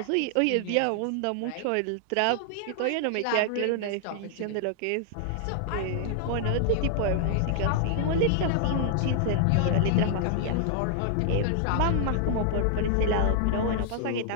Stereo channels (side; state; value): both; different; correlation 0.00